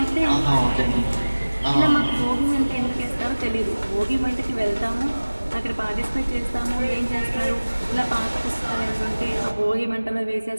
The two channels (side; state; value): both; inverted; correlation -1.00